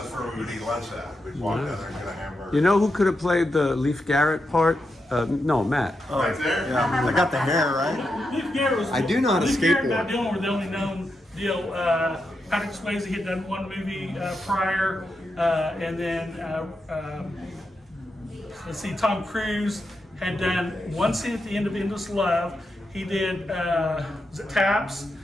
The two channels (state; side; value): normal; both; correlation 0.86